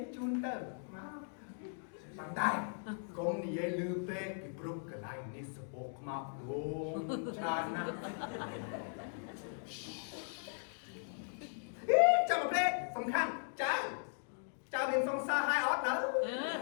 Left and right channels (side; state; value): right; silent; digital silence